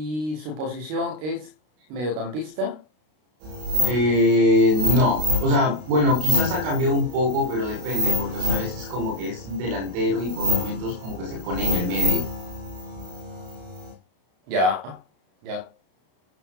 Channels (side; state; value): left; late; 32 ms